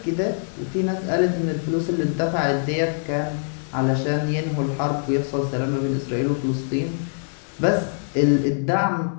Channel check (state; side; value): silent; right; digital silence